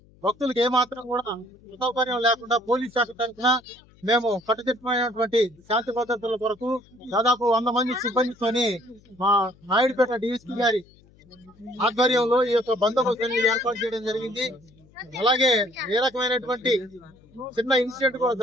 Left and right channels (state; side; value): noise; left; hum, 28 dB below the sound